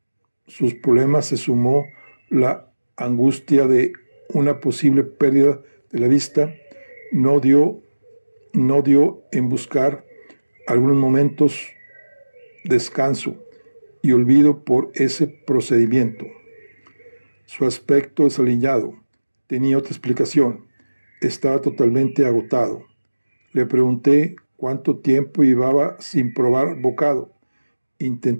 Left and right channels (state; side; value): inverted; both; correlation -1.00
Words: sus problemas se sumó la angustia de una posible pérdida de la vista, no dio en buscar algunos momentos descanso y olvido por ese procedimiento. Su aspecto desaliñado tenía otra explicación. Estaba totalmente agotado. Le pregunté cuánto tiempo llevaba sin probar bocado.